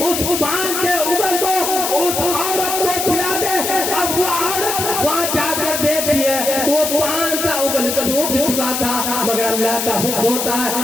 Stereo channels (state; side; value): noise; left; hiss, 2 dB below the sound